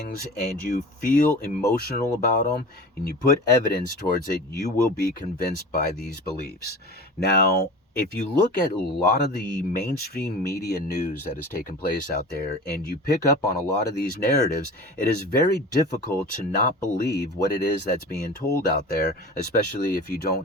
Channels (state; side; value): normal; both; correlation 0.36